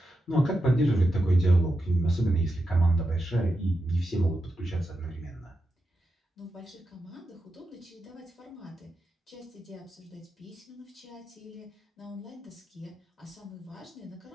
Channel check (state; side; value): normal; both; correlation 0.88